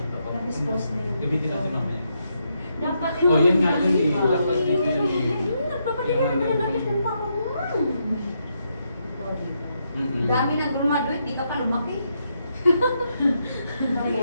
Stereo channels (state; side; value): inverted; both; correlation -0.79